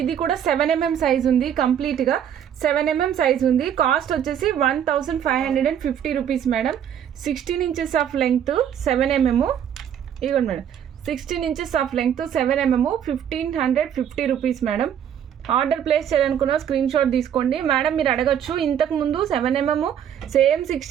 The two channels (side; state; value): left; quieter; 9.2 dB